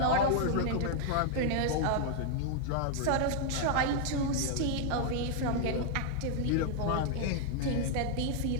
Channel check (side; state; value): both; different; correlation -0.01